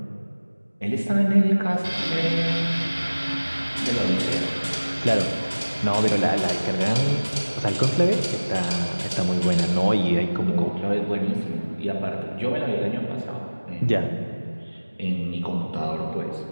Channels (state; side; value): inverted; both; correlation -1.00